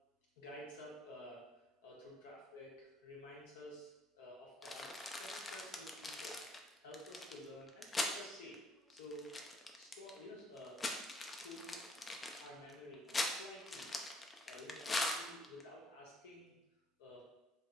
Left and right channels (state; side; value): normal; both; correlation 0.65